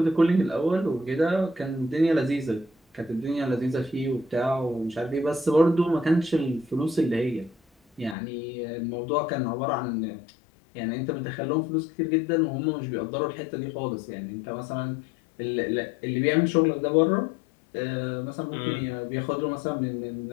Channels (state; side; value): drops out; right; at 8.2 s